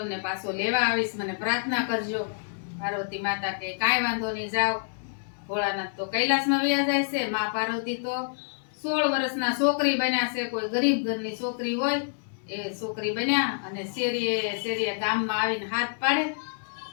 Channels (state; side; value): silent; right; 60 dB below the other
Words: પાછો લેવા આવીશ, મને પ્રાર્થના કરજો। પાર્વતી માતા કે કાંઈ વાંધો નહીં, જાઓ। ભોળાનાથ તો કૈલાસમાં વયા જાય છે, માં પાર્વતી તો 16 વર્ષના છોકરી બન્યા છે, કોઈ ગરીબ ઘરની છોકરી હોય એ છોકરી બન્યા અને શેરીએ ગામમાં આવીને હાથ પાડે